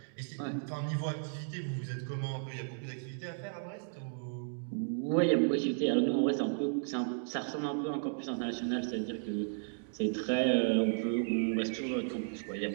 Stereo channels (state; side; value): silent; left; digital silence